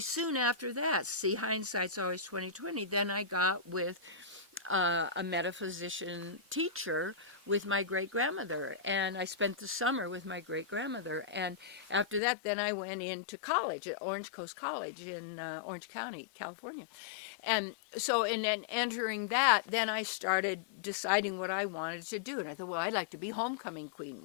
soon after that, see, hindsight's always 20/20, then I got with a metaphysician teacher with my great-grandmother. And I spent the summer with my great-grandmother. And after that, then I went into college at Orange Coast College in Orange County, California. And so in entering that, then I started deciding what I wanted to do. And I thought, well, I'd like to be homecoming queen.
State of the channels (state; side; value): drops out; right; at 12.2 s